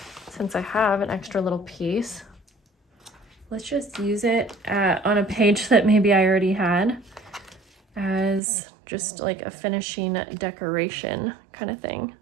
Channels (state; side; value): drops out; left; at 8.4 s